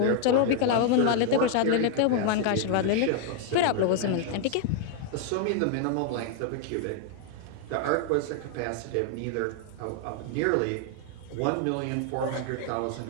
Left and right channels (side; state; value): both; different; correlation 0.00